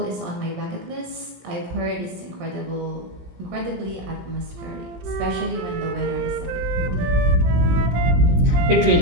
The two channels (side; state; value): left; late; 17 ms